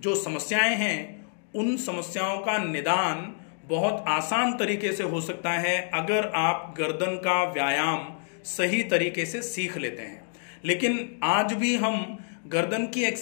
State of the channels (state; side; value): silent; right; 60 dB below the other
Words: समस्याएं हैं उन समस्याओं का निदान बहुत आसान तरीके से हो सकता है अगर आप गर्दन का व्यायाम सही तरीके से सीख लेते हैं। लेकिन आज भी हम गर्दन की